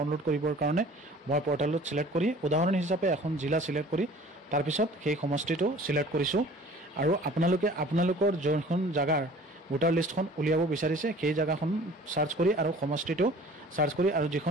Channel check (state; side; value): normal; both; correlation 0.47